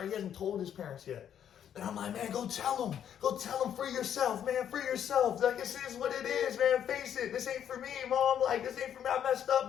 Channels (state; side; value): quieter; right; 9.4 dB